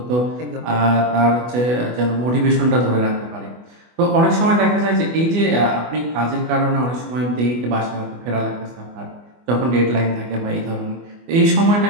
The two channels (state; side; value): late; left; 24 ms